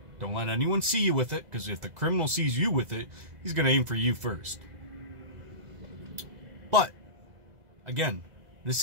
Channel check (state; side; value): late; left; 2.0 ms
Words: Don't let anyone see you with it, because if the criminal sees you with it, he's going to aim for you first. But, again, this